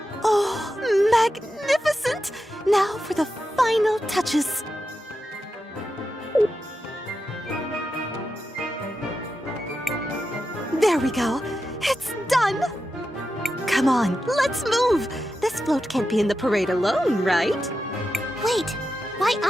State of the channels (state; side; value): normal; both; correlation 0.89